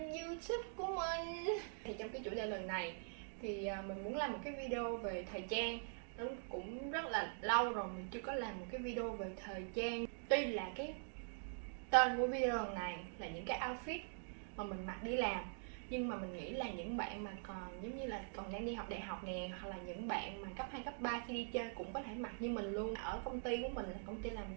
YouTube của mình. Thì trong cái chủ đề lần này thì mình muốn làm một cái video về thời trang. Nó cũng rất là lâu rồi mình chưa có làm một cái video về thời trang. Tuy là cái tên của video lần này là những cái outfit mà mình mặc đi làm, nhưng mà mình nghĩ là những bạn mà còn giống như là còn đang đi học đại học nè, hoặc là những bạn mà cấp 2, cấp 3 khi đi chơi cũng có thể mặc như mình luôn. Ở công ty của mình là công ty làm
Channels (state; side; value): silent; left; digital silence